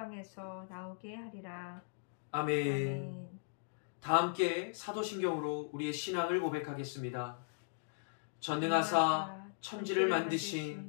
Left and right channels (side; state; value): right; silent; digital silence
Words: 나오게 하리라. 아멘. 아멘. 다 함께 사도신경으로 우리의 신앙을 고백하겠습니다. 전능하사 천지를